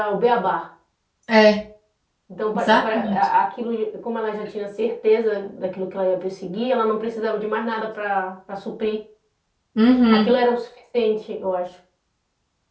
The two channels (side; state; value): both; identical; correlation 1.00